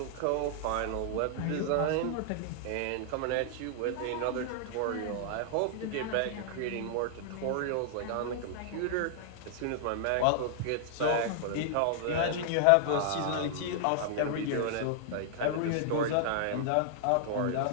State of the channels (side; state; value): both; different; correlation -0.01